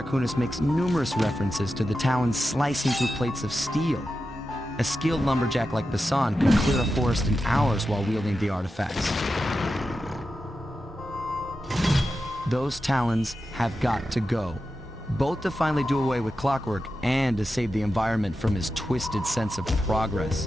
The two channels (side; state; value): both; normal; correlation 0.91